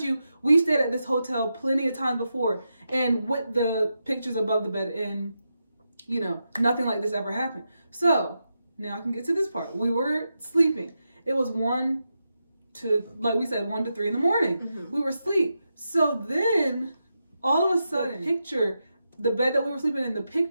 you, we stayed at this hotel plenty of times before, and with the pictures above the bed, and nothing like this ever happened. So now I can get to this part. We were sleeping. It was 1 to 3 in the morning. Mm-hmm. We were asleep. So then all of a sudden, the bed that we were sleeping in, the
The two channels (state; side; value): inverted; both; correlation -0.87